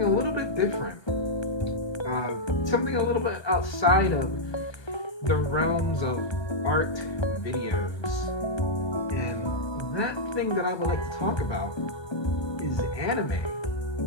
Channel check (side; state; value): right; late; 1.2 ms